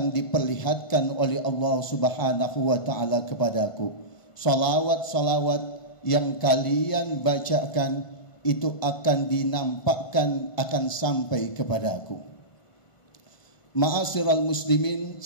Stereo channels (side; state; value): right; late; 1.5 ms